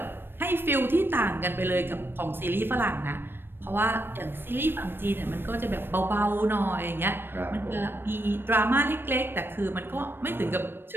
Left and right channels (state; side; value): late; left; 0.10 ms